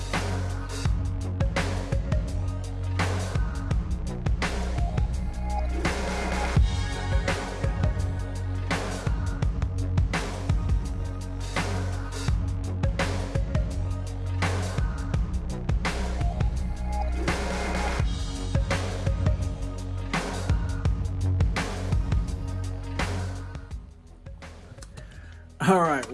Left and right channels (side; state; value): both; identical; correlation 1.00